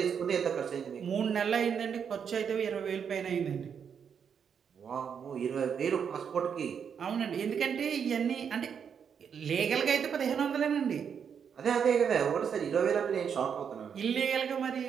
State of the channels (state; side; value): quieter; left; 7.3 dB